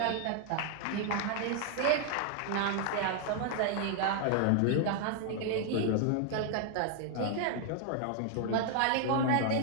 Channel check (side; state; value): both; different; correlation 0.00